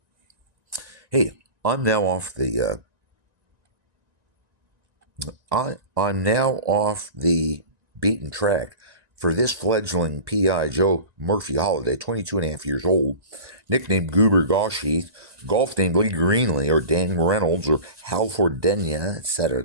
Hey, I'm now off the I'm now off the beaten track for this fledgling PI, Joe Murphy Holiday, 22 and a half years old, nicknamed Goober Gawsheath, golf named Lee Greenlee or Dan Reynolds or Hal Fordenia, etc.,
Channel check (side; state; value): left; late; 1.9 ms